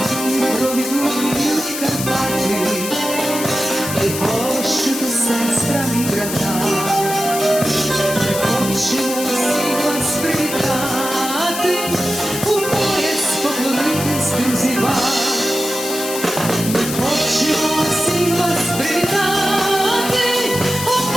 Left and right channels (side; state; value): left; noise; hiss, 6 dB below the sound